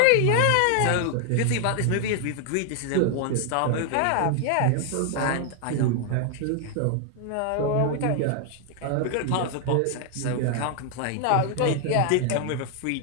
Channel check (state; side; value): different; both; correlation 0.00